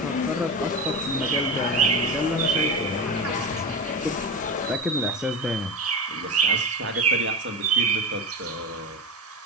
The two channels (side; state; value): both; normal; correlation 0.23